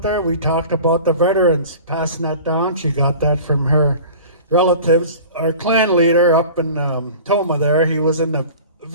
there? We talked about the veterans passing that down. She got that from her relatives. Our clan leader up in Toma there, he was in the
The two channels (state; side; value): inverted; both; correlation -0.40